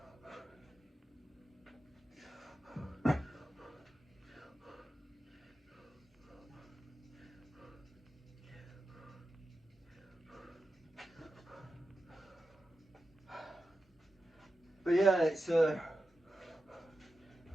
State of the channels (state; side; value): normal; both; correlation 0.91